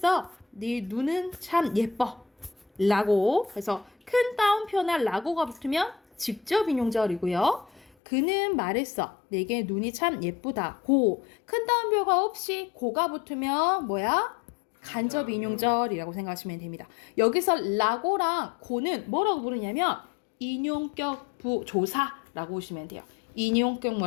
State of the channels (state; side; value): drops out; right; at 7.9 s